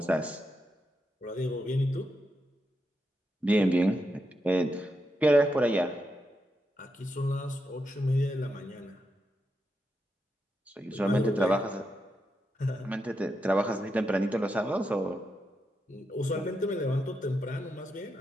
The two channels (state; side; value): normal; both; correlation 0.84